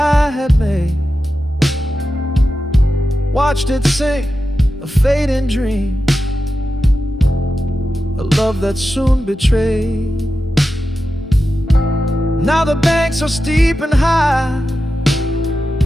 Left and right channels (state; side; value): normal; both; correlation 0.91